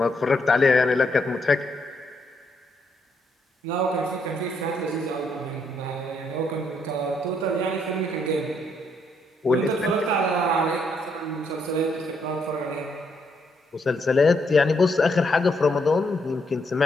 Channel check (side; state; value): both; normal; correlation 0.75